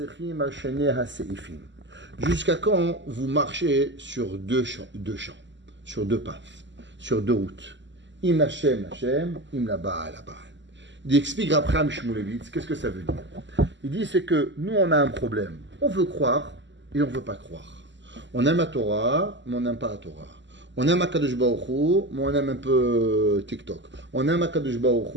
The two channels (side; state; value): left; late; 0.53 ms